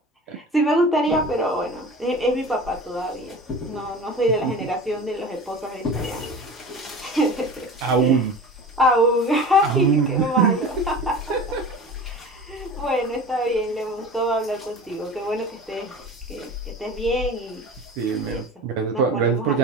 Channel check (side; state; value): both; normal; correlation 0.36